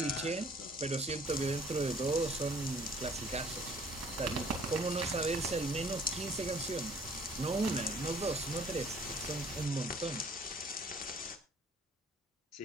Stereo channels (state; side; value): normal; both; correlation 0.56